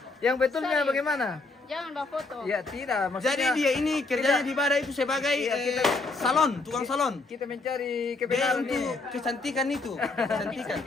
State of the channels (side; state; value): right; quieter; 3.5 dB